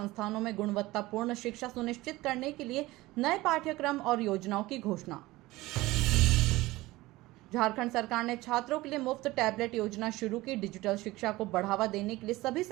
में गुणवत्तापूर्ण शिक्षा सुनिश्चित करने के लिए नए पाठ्यक्रम और योजनाओं की घोषणा। झारखंड सरकार ने छात्रों के लिए मुफ्त टैबलेट योजना शुरू की। डिजिटल शिक्षा को बढ़ावा देने के लिए सभी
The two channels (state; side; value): quieter; left; 19.2 dB